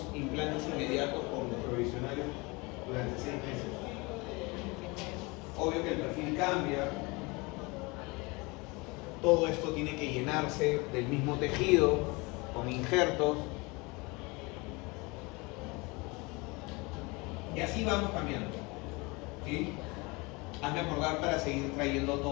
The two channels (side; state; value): right; quieter; 26.1 dB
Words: implantes inmediatos con los provisionales durante 6 meses. Obvio que el perfil cambia. Todo esto tiene que llenarse del mismo tejido, con injertos. Y así vamos cambiando, ¿sí? Hazme acordar para seguir trayendo